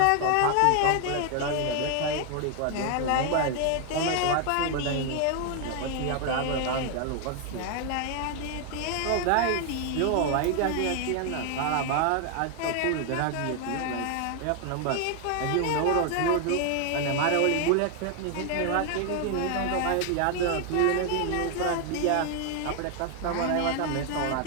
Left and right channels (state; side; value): different; both; correlation 0.00